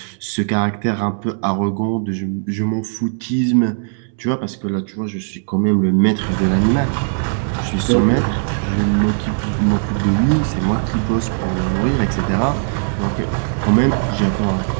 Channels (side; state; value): left; silent; digital silence